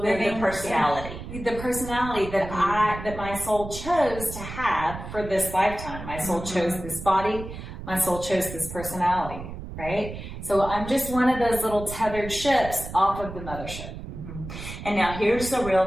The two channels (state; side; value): noise; right; rumble, 10 dB below the sound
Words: they're the personality. The personality that that my soul chose to have for this lifetime. My soul chose this body. My soul chose this personality, right? So I'm just one of those little tethered ships off of the mothership. And now here's the